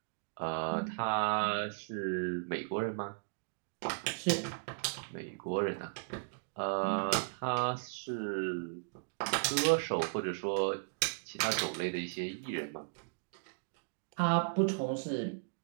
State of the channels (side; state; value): left; silent; digital silence